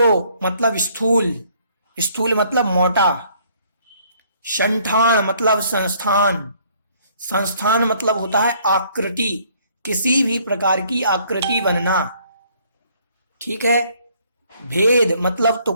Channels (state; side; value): inverted; both; correlation -0.63